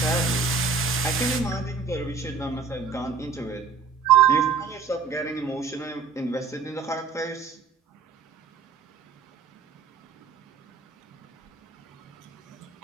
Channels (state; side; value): quieter; left; 5.3 dB